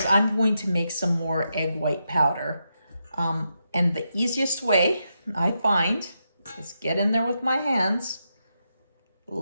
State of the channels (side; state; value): both; inverted; correlation -0.85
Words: I'm going to make some more egg white powder. And the easiest way I find is get in there with my hands,